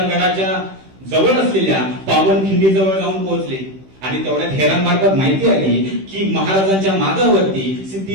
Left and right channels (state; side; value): late; left; 15 ms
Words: जवळ असलेल्या पावनखिंडी जवळ जाऊन पोहोचले. आणि तेवढ्यात हेरांमार्फत माहिती आली की महाराजांच्या मागावरती